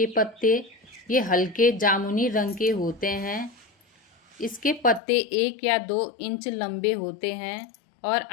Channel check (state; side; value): drops out; right; at 5.0 s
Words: पत्ते। ये हल्के जामुनी रंग के होते हैं। इसके पत्ते 1 या 2 इंच लंबे होते हैं और